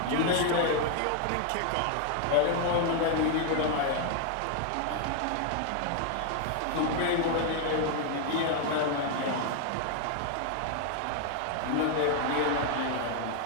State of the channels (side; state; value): both; different; correlation 0.00